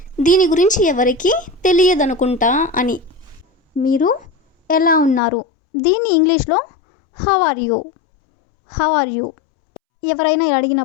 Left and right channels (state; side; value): drops out; right; at 5.2 s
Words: దీని గురించి ఎవరికి తెలియదనుకుంటా అని. మీరు ఎలా ఉన్నారు? దీన్ని ఇంగ్లీష్లో how are you. How are you. ఎవరైనా